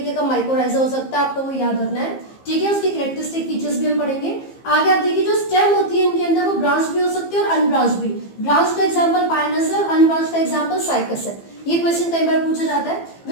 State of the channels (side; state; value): right; late; 15 ms